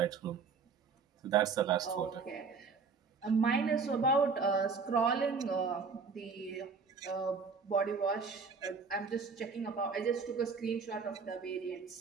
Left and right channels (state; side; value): quieter; left; 5.1 dB